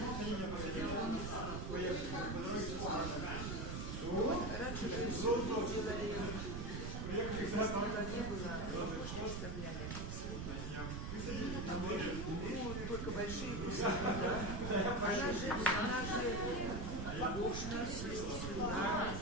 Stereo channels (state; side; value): noise; right; rumble, 4 dB below the sound